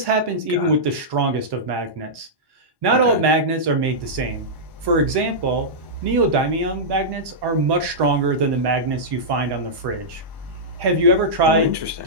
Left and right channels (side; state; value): left; late; 1.1 ms